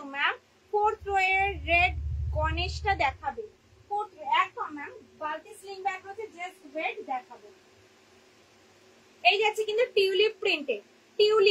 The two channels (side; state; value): both; identical; correlation 1.00